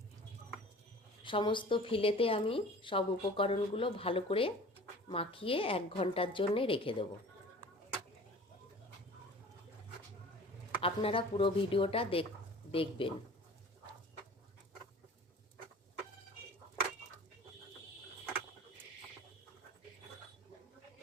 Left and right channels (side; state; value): both; normal; correlation 0.44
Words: সমস্ত ফিলেতে আমি সব উপকরণগুলো ভালো করে মাখিয়ে 1 ঘন্টার জন্য রেখে দেব। আপনারা পুরো ভিডিওটা দেখবেন।